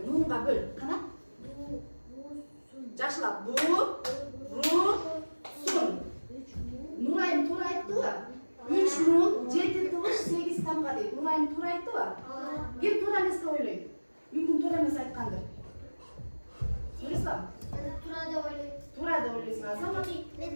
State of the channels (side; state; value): both; inverted; correlation -1.00